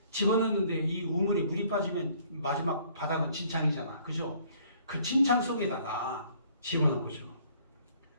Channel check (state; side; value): inverted; both; correlation -0.60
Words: 집어넣는데 이 우물에 물이 빠지면 마지막 바닥은 진창이잖아, 그죠? 그 진창 속에다가 집어넣은 거죠.